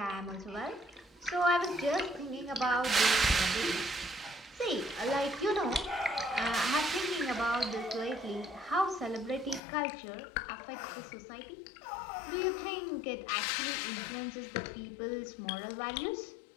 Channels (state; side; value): drops out; right; at 9.6 s